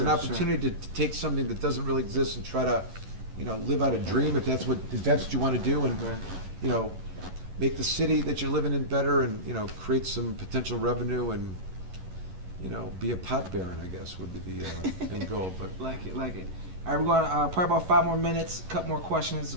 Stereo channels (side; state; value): left; late; 11 ms